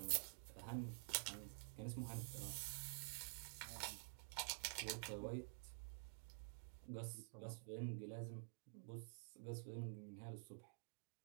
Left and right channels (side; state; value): left; quieter; 34.1 dB